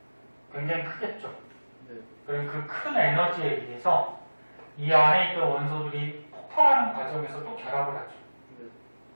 굉장히 크겠죠. 그럼 그 큰 에너지에 의해서 이 안에 있던 원소들이 폭발하는 과정에서 또 결합을 하죠.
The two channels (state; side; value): inverted; both; correlation -1.00